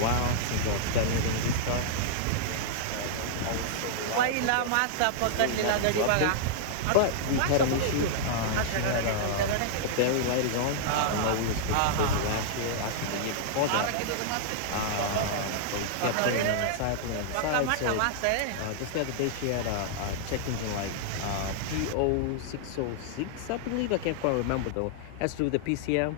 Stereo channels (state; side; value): different; both; correlation -0.01